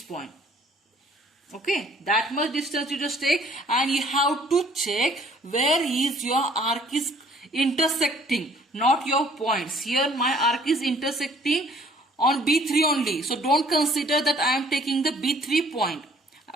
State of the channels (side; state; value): both; normal; correlation 0.58